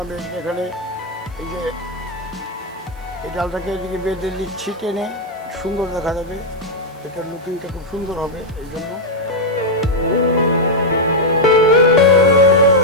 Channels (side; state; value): right; noise; hiss, 29 dB below the sound